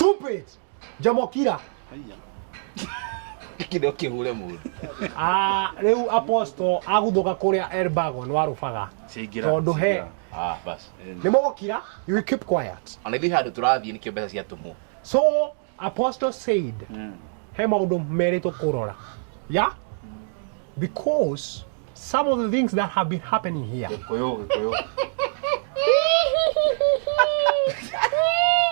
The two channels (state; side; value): silent; left; digital silence